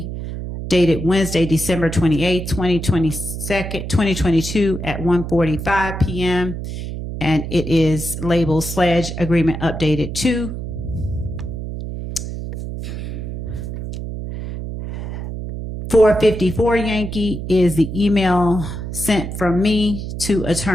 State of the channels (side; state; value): right; noise; hum, 6 dB below the sound